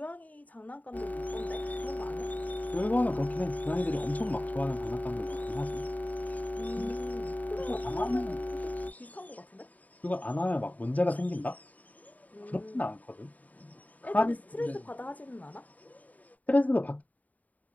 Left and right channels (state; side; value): late; right; 0.074 ms